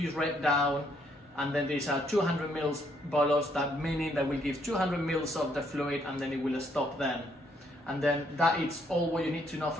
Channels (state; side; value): normal; both; correlation 0.70